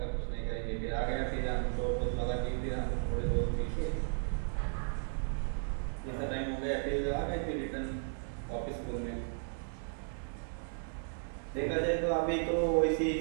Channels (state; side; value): silent; left; 54 dB below the other